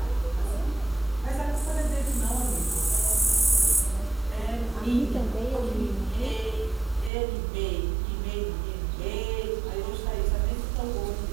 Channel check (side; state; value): left; drops out; at 7.1 s